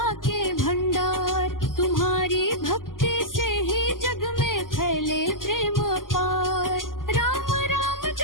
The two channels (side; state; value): right; late; 0.90 ms